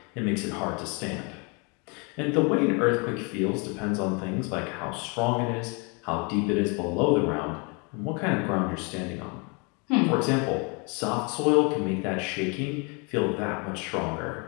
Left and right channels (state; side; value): quieter; right; 32.3 dB